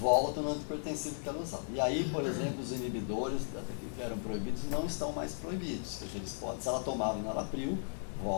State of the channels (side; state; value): right; silent; digital silence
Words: no antihipertensivo que ela usava. E aí, por exemplo, os inibidores que eram proibidos não estão mais proibidos. Porque eles podem, se ela tomava enalapril,